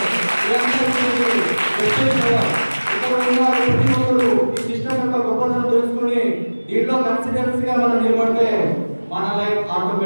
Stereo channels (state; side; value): inverted; both; correlation -1.00